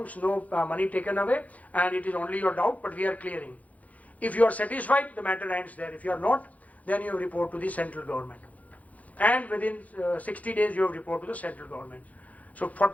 no money taken away, and it is only your doubt, but we are clearing. If you are satisfied, the matter ends there. If you are not, then you report to the central government. And within 60 days, you have report to the central government. So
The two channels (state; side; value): late; right; 0.072 ms